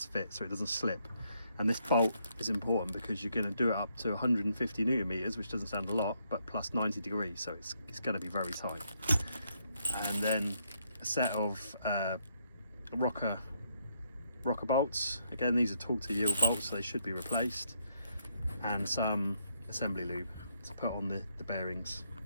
fit so it doesn't slip. And this bolt is important because you're going to do it up to 150 newton meters, which doesn't sound a lot, but plus 90 degrees, so it's going to be very tight. And then a set of rocker bolts. Again, these are torque to yield bolts, so they should be replaced, and some assembly lube to put on the bearings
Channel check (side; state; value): both; inverted; correlation -0.74